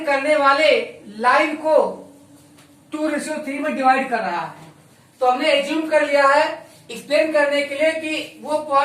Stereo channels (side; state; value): both; identical; correlation 1.00